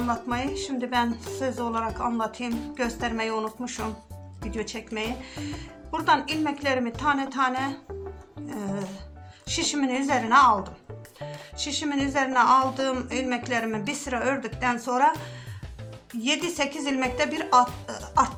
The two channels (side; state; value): both; identical; correlation 1.00